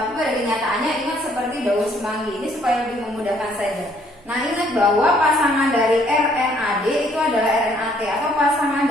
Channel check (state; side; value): normal; both; correlation 0.64